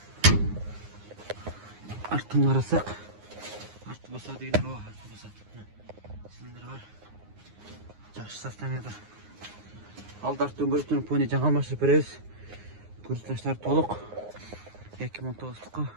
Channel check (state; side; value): late; left; 9.6 ms